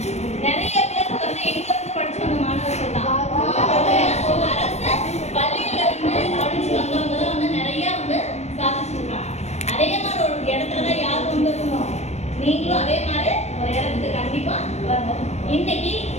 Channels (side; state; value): right; late; 0.32 ms